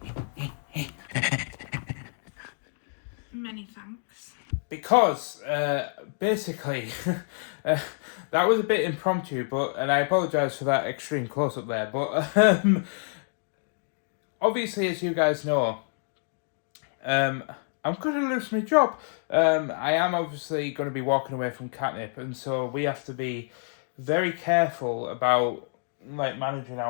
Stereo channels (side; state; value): right; silent; digital silence